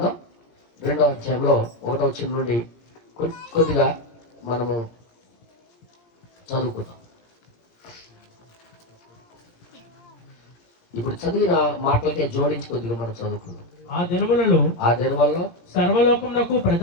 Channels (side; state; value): right; late; 17 ms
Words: 2వ అధ్యాయంలో 1వ వచనం నుండి కొద్దిగా మనము చదువుకుందాం. ఇప్పుడు చదివిన మాటలకే జోడించి కొద్దిగా మనం చదువుకుందాం. ఆ దినములలో సర్వలోకమునకు